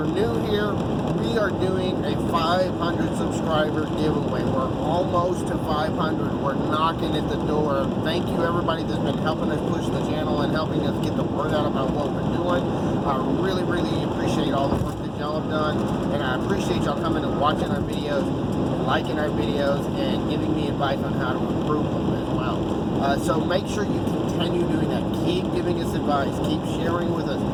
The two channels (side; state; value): both; identical; correlation 1.00